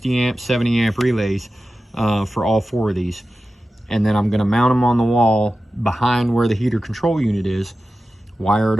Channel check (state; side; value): normal; both; correlation 0.94